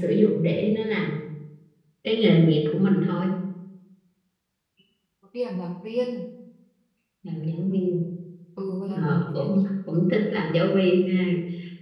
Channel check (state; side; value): identical; both; correlation 1.00